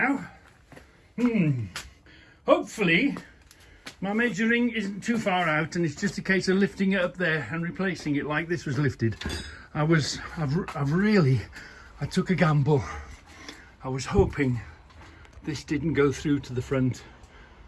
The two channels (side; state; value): both; identical; correlation 1.00